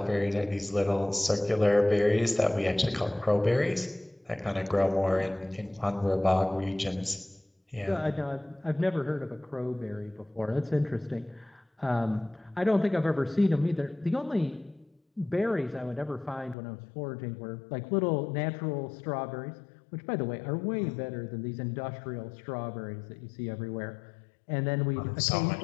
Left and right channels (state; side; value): drops out; right; at 16.6 s